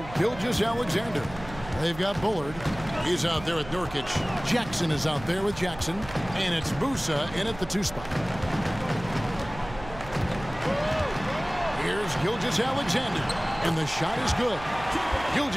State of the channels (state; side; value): noise; right; hum, 15 dB below the sound